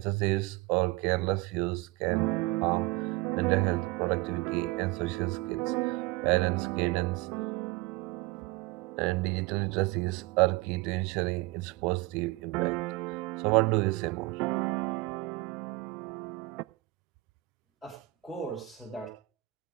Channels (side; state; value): left; quieter; 21.1 dB